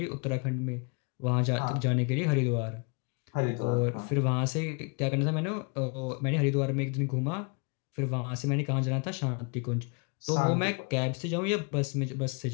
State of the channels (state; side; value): quieter; right; 35.2 dB